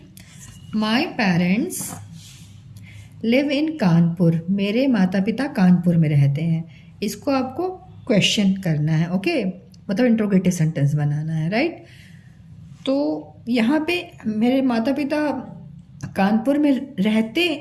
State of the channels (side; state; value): both; identical; correlation 1.00